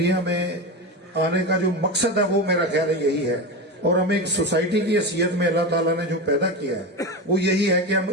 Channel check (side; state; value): both; normal; correlation 0.20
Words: میں آنے کا جو مقصد ہے وہ میرا خیال ہے یہی ہے. اور ہمیں ایک سوسائٹی کی حیثیت میں اللہ تعالیٰ نے جو پیدا کیا ہے وہ یہی ہے کہ ہم